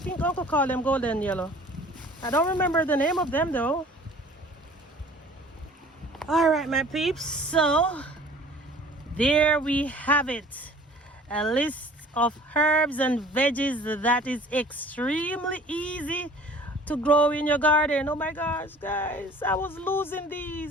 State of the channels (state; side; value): normal; both; correlation 0.48